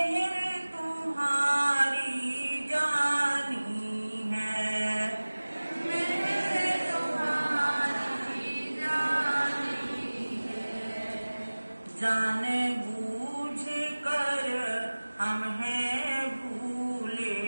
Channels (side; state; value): both; inverted; correlation -1.00